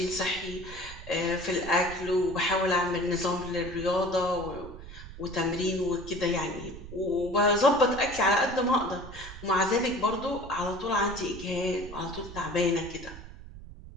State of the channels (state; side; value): noise; right; rumble, 14 dB below the sound